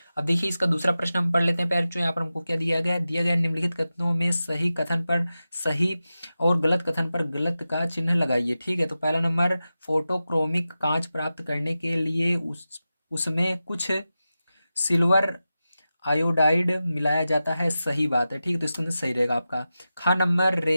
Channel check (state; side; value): inverted; both; correlation -0.93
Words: अब देखिए इसका दूसरा प्रश्न हम पढ़ लेते हैं। पैर जो यहाँ पर हमको क्या दिया गया है, दिया गया निम्नलिखित कथनों में सही कथन पर सही और गलत कथन पर गलत का चिन्ह लगाइए, ठीक है। तो पहला नंबर, फोटोक्रोमिक कांच प्राप्त करने के लिए उसमें कुछ सिल्वर आयोडाइड मिलाया जाता है, सही बात है, ठीक है। तो इसके अंदर सही रहेगा आपका। खा नंबर,